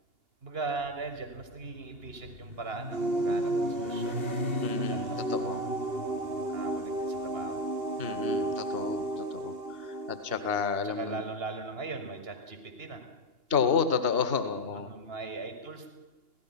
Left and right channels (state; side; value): late; left; 2.8 ms